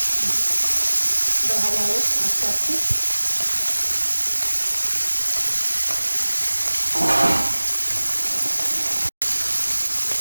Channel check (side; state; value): both; inverted; correlation -1.00